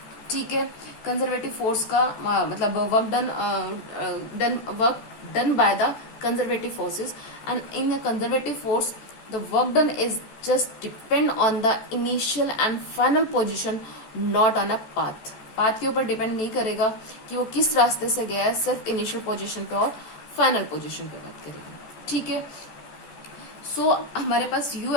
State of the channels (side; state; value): right; late; 14 ms